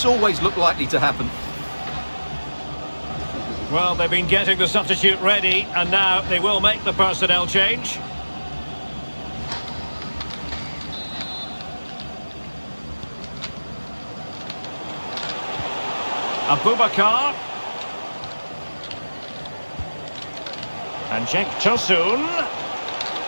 always looked likely to happen. Well, they've been getting the substitute ready, and now they will make the personnel change. Abubakar. And Cenk Tosun.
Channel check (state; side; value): inverted; both; correlation -1.00